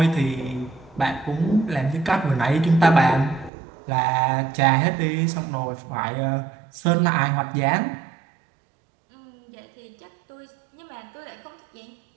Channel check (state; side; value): drops out; left; at 3.5 s